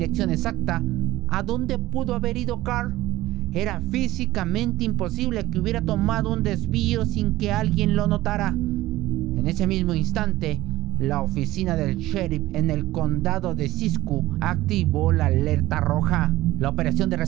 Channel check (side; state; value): left; quieter; 16.8 dB